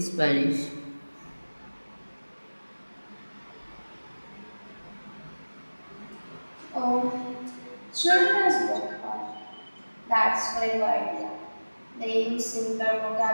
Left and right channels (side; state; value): both; inverted; correlation -1.00